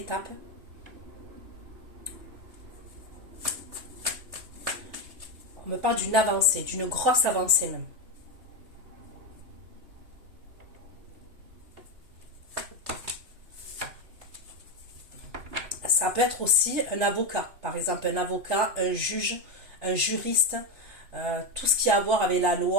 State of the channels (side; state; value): left; late; 3.3 ms